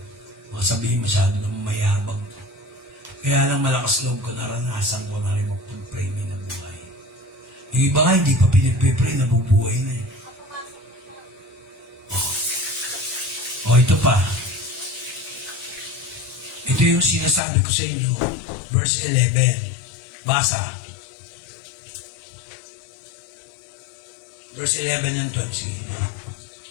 Baka sabihin masyado na mayabang ko. Kaya lang malakas loob ko, naranasan ko na rin mag-pray na buhay. Yung iba nga, hindi pa pinipipray, nabubuhay na eh. Ito pa. Ito yung sinasabi ko sa inyo, verse 11. Basa. Verse 11 and 12. Sige.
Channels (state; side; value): drops out; right; at 17.4 s